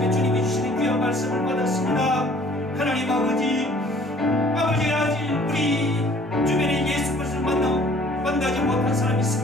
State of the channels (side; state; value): both; normal; correlation 0.55